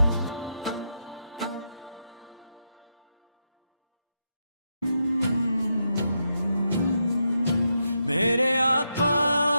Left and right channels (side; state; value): both; inverted; correlation -0.83